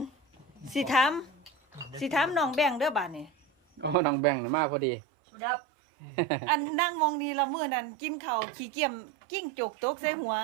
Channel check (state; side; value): drops out; left; at 4.0 s